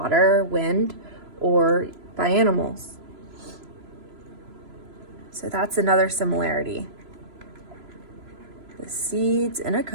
wind, or by animals. So that's another similarity. The seeds in a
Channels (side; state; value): left; late; 3.0 ms